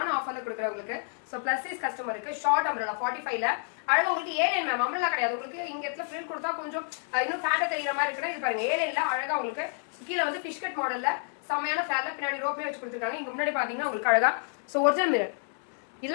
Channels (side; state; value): right; silent; 58 dB below the other